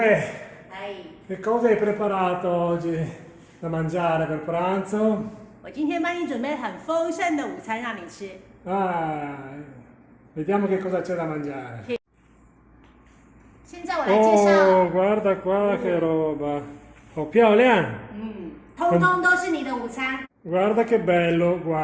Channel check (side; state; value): both; identical; correlation 1.00